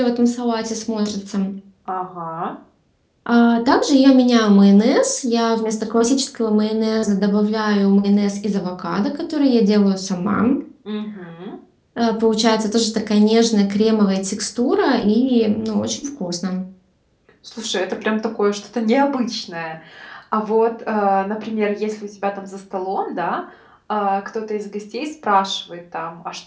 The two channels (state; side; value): identical; both; correlation 1.00